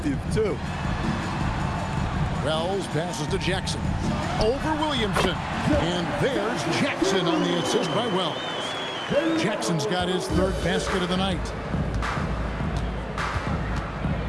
too. Wells passes to Jackson. Over Williamson. And there's Jackson on the assist by Wells. Jackson's got his third basket of the night.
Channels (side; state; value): both; identical; correlation 1.00